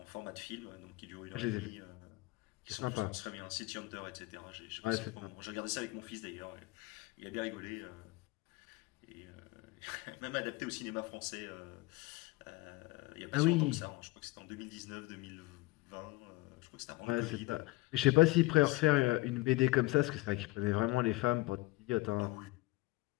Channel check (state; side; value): quieter; right; 21.3 dB